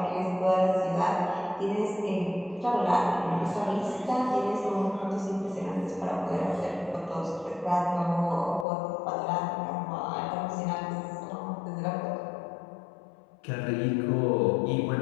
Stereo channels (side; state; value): right; drops out; at 8.7 s